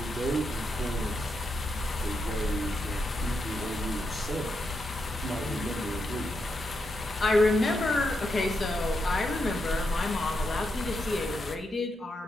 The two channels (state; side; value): normal; both; correlation 0.83